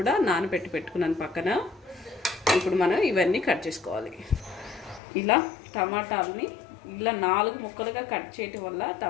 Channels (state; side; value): drops out; right; at 5.0 s